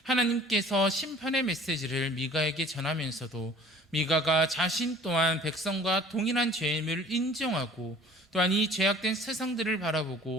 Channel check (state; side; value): normal; both; correlation 0.49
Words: 하나님께서 심판의 메시지를 미가에게 전하면서도 미가가 자신 또한 백성과 동일한 죄임을 인정하고 또한 이 죄악된 세상들을